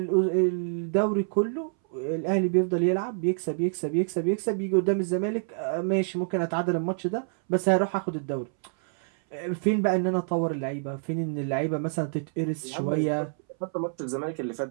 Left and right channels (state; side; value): silent; left; 60 dB below the other